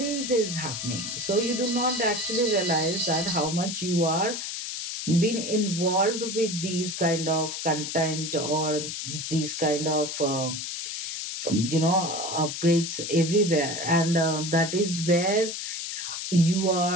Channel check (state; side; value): noise; left; hiss, 5 dB below the sound